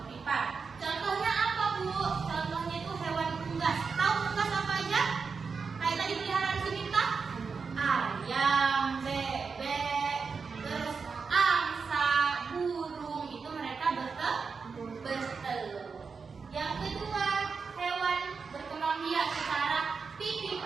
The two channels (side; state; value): left; quieter; 5.2 dB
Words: Contohnya apa Bu? Contohnya itu hewan unggas. Tahu unggas apa aja? Kayak tadi peliharaan si Mita? Ayam, bebek, terus angsa, burung. Itu mereka bertelur. Yang kedua, hewan berkembang biak secara